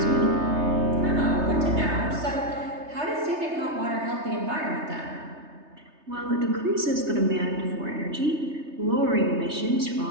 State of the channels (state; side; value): late; left; 3.3 ms